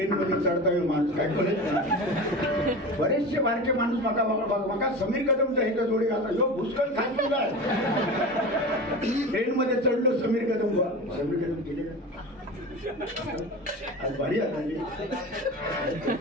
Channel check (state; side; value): normal; both; correlation 0.30